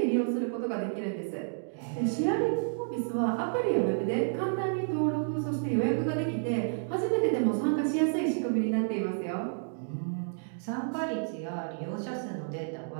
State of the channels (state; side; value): silent; left; digital silence